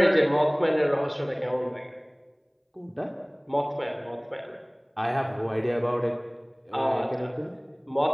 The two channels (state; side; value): identical; both; correlation 1.00